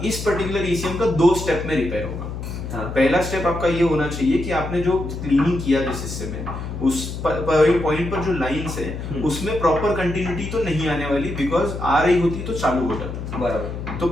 इस पर्टिकुलर ईसीएम का 2 स्टेप में रिपेयर होगा। पहला स्टेप आपका ये होना चाहिए कि आपने जो क्लीनिंग किया जिस हिस्से में, उस पॉइंट पर जो लाइंस है उसमें प्रॉपर कंटिन्यूटी तो नहीं आने वाली, बिकॉज आ रही होती तो चालू हो जाता। बराबर। तो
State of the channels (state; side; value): noise; left; hum, 7 dB below the sound